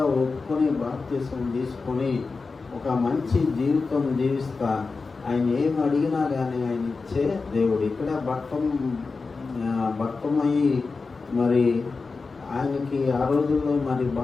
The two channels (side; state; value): right; quieter; 4.3 dB